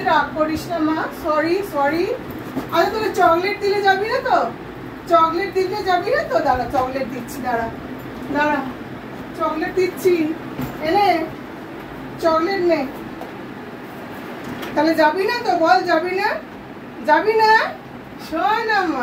রাগ করিস না মা, সরি সরি। আরে তোকে চকলেট দিলে যাবি না তো? চকলেট দিতে যাবি না তো? দাঁড়া, চকলেট দিচ্ছি, দাঁড়া দাঁড়া, চকলেট দিচ্ছি, এনে চকলেট নে। তাহলে যাবি না তো? বল যাবি না, যাবি না? শোনা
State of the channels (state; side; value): identical; both; correlation 1.00